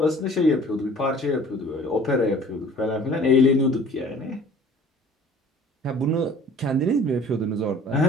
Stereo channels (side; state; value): both; normal; correlation 0.50